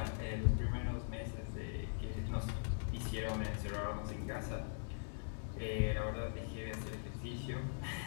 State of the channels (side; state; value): right; silent; digital silence